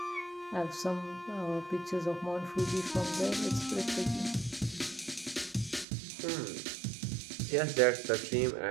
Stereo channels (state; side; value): drops out; left; at 5.9 s